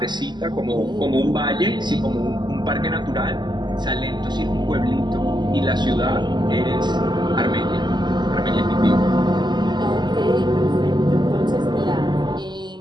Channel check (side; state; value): left; late; 0.21 ms